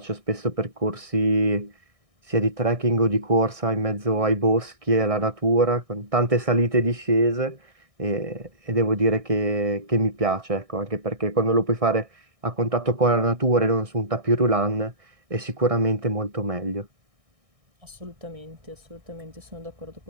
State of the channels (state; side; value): late; left; 1.6 ms